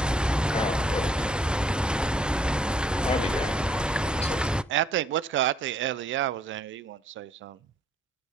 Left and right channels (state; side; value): normal; both; correlation 0.65